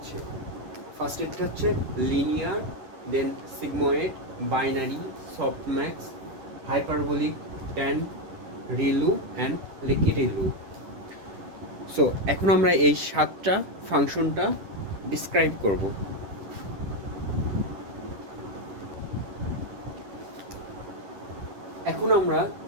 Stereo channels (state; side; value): late; left; 11 ms